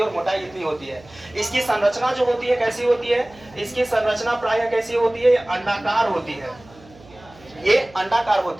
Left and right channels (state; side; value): noise; right; hum, 24 dB below the sound